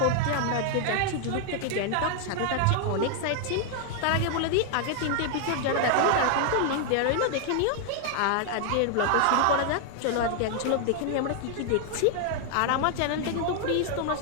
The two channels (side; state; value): both; different; correlation 0.00